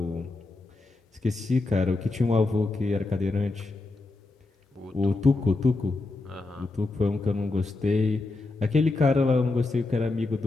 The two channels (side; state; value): right; quieter; 3.2 dB